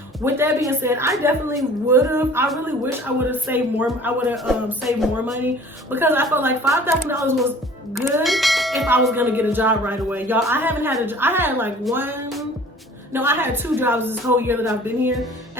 with that being said, I definitely I really wish I would have saved more. I would have saved more money, because I felt like $5,000 was good if I was gonna get a job right away. Y'all, I haven't had I had 2 jobs this whole year that I've been here,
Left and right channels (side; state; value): both; normal; correlation 0.48